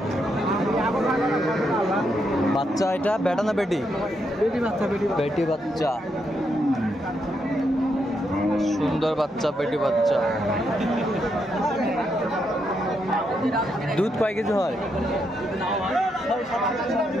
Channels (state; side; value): normal; both; correlation 0.80